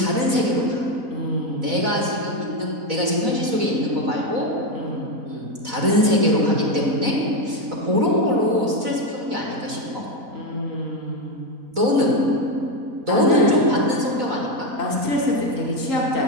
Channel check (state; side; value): late; left; 4.0 ms